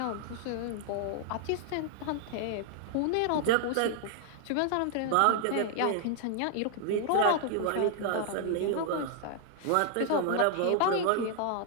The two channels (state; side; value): different; both; correlation 0.00